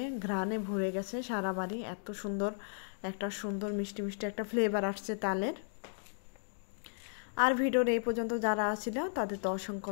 ঘ্রাণে ভরে গেছে সারা বাড়ি, এত সুন্দর একটা সুন্দর মিষ্টি মিষ্টি একটা ফ্লেভার আসছে তালের। আর ভিডিওর এই পর্যন্ত যারা ছিল তাদের তো অসংখ্য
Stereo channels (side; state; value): right; silent; digital silence